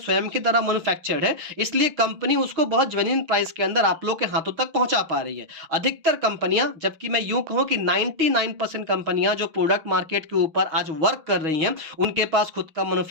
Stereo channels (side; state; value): left; late; 6.4 ms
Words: के द्वारा मैन्युफैक्चर्ड है, इसलिए कंपनी उसको बहुत जेन्युइन प्राइस के अंदर आप लोग के हाथों तक पहुंचा पा रही है। अधिकतर कंपनियां, जबकि मैं यूं कहूं कि 99% कंपनियां जो प्रोडक्ट मार्केट के ऊपर आज वर्क कर रही हैं उनके पास खुद का